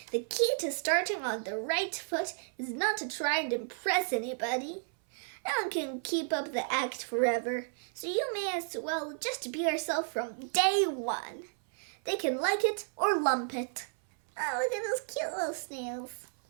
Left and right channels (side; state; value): left; silent; 56 dB below the other